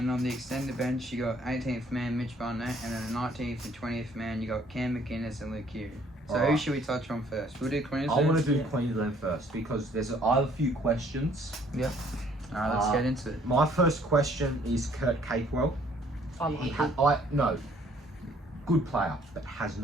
on the extended bench, you got 18th man Mitch Barnett, and then the 19th and 20th man, you got Cam McInnes and Luke Hughes. So who Alright. should we touch on first? We'll do I Queensland. want to do Yeah. Queensland first because I have a few questions. Alright, let's get into it. My first question is Kurt Capewell. I like him. No, good player, but has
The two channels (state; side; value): normal; both; correlation 0.61